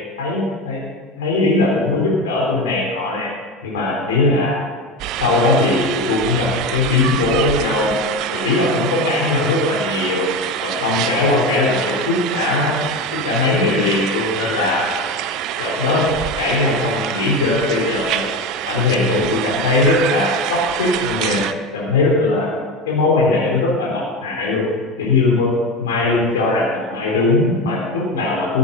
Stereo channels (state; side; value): normal; both; correlation 0.21